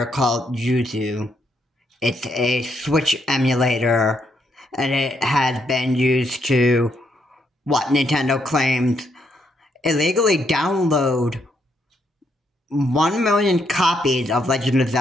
called Yuzu. It's a Switch emulator, and it has been used to, what Nintendo claims, illegally download 1 million copies of Legend of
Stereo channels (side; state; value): both; normal; correlation 0.76